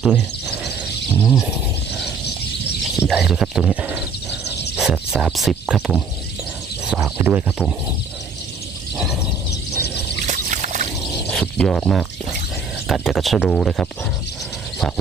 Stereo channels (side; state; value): left; quieter; 4.5 dB